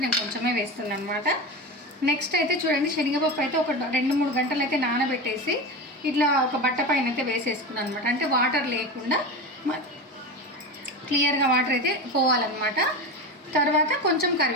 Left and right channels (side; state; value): both; normal; correlation 0.24